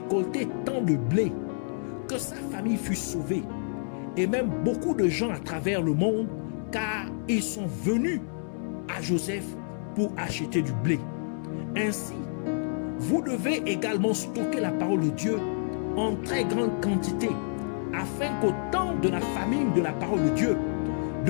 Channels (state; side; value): silent; right; 59 dB below the other